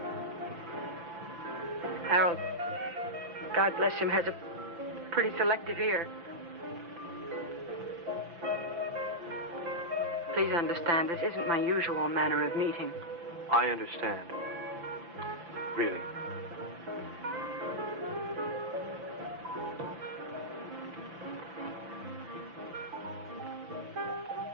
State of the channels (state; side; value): late; left; 5.9 ms